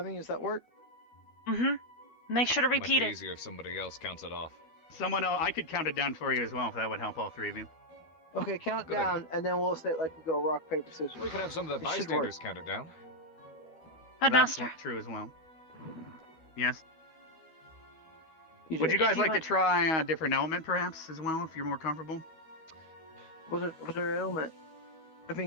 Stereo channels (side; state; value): right; late; 12 ms